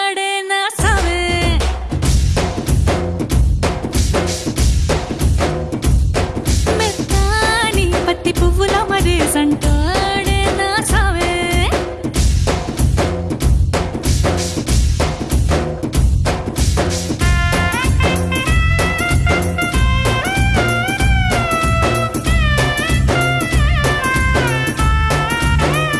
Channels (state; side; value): identical; both; correlation 1.00